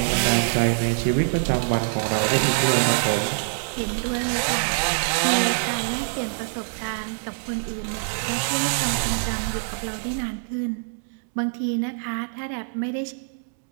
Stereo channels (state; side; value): silent; left; digital silence